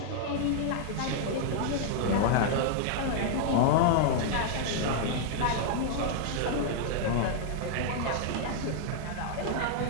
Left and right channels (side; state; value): both; different; correlation -0.01